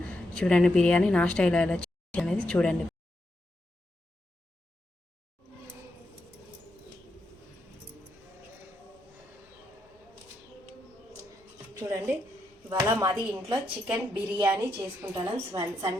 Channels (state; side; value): normal; both; correlation 0.82